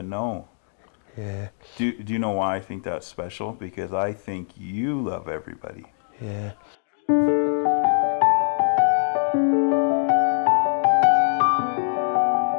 know. Yeah, Do you know why I think that's special? Because I think you love everybody. yeah.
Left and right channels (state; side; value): silent; right; digital silence